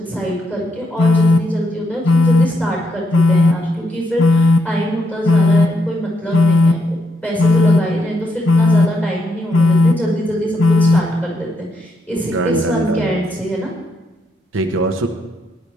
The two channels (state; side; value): normal; both; correlation 0.78